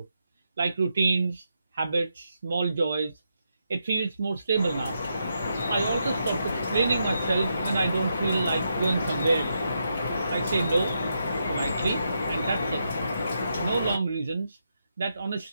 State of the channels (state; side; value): inverted; both; correlation -0.82